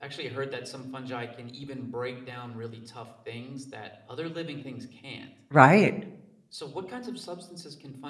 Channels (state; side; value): identical; both; correlation 1.00